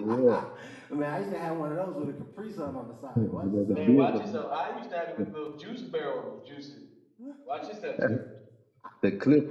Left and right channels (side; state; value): both; identical; correlation 1.00